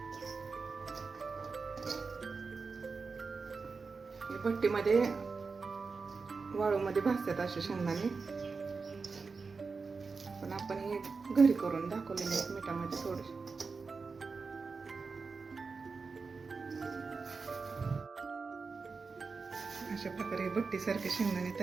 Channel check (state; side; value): quieter; left; 4.6 dB